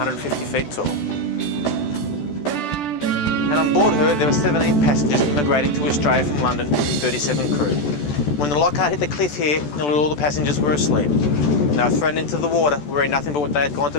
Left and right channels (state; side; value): late; right; 14 ms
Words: feet tall. And on board her, there were 17 passengers immigrating to Australia from London and 37 crew. When the Loch Ard hit the cliff here, nearly all the passengers were asleep. And they were thrown into the water wearing nothing but what they had gone